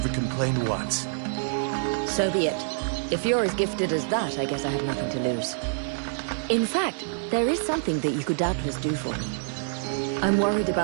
complained once. So be it. If you're as gifted as that, I guess I have nothing to lose. In fact, there is something that you could doubtless do for me. I'm worried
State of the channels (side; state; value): left; silent; digital silence